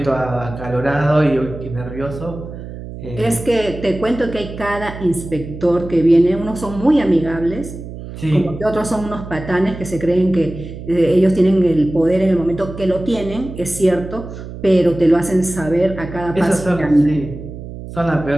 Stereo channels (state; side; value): noise; right; hum, 11 dB below the sound